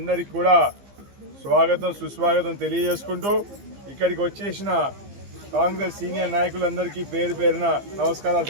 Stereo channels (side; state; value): left; late; 15 ms